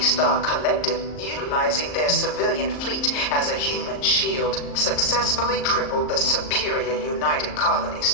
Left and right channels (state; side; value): late; right; 38 ms